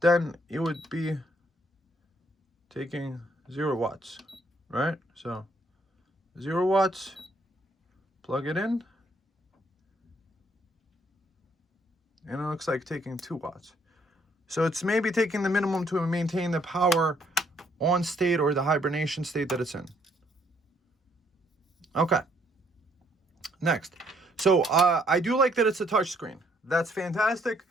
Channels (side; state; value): both; normal; correlation 0.68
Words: then it would be taking 0 watts, right? So 0 watts, plug it in. And it looks like taking 2 watts. So it's maybe taking the minimum to maintain the power on state, or the hibernation state that it's in. Okay. Next. So I do like that it's a touch screen. That's fantastic,